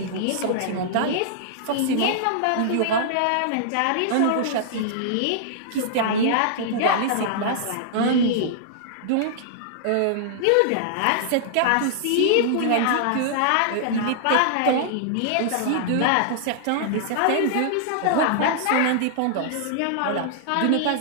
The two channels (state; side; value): different; both; correlation -0.01